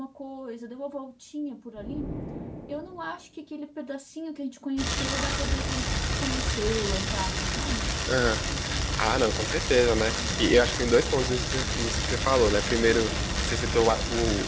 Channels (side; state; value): both; identical; correlation 1.00